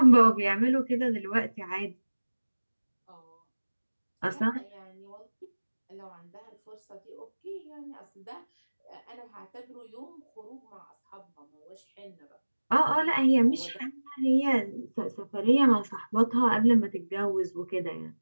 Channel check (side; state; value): both; inverted; correlation -1.00